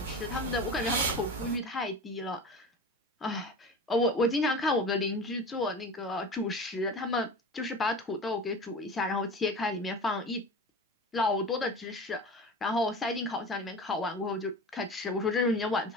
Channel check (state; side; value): normal; both; correlation 0.33